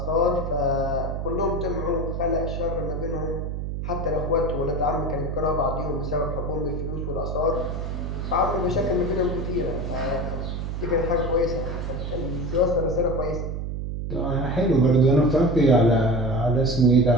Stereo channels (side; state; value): right; noise; hum, 4 dB below the sound